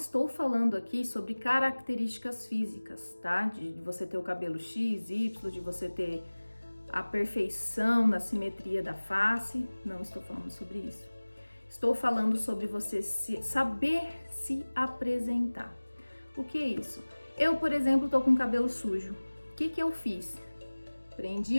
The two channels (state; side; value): inverted; both; correlation -1.00